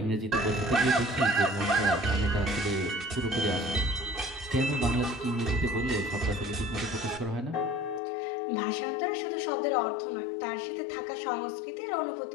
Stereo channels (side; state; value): right; drops out; at 8.0 s